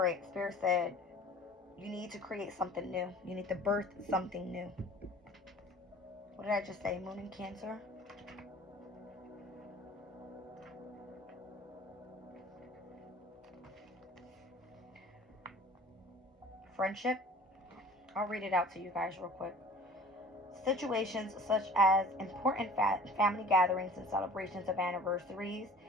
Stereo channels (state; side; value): normal; both; correlation 0.45